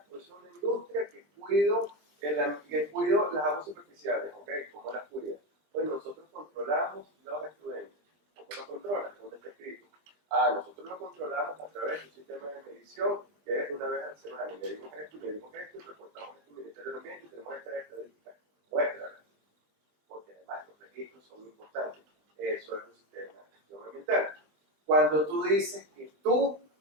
yo soy una industria que cuido las aguas superficiales, ¿ok? ¿Cómo las cuida? Pues nosotros controlamos los efluentes. ¿Cómo lo controlas? ¿Dónde está escrito? Nosotros lo controlamos a través de un sistema de medición que es una vez a la semana. Y medimos esto, y reportamos esto al Ministerio del Ambiente y tenemos estas estadísticas. Muéstralas. Porque además los registros son importantes. Eso es un sistema de gestión ambiental. Cuando tú dices que tú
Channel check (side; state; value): left; late; 20 ms